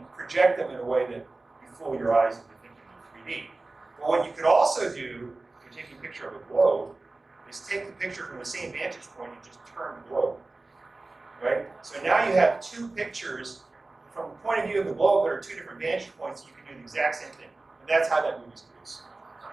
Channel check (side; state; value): left; quieter; 3.2 dB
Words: project them in a way that you fool your eyes into thinking of 3D. But what you could also do, if you're taking a picture of a globe, is take the picture from the same vantage point and just turn the globe, right? So now you have two pictures from the point of view of the globe that are two different vantage points. You can do the exact same thing, and that's how that movie's produced.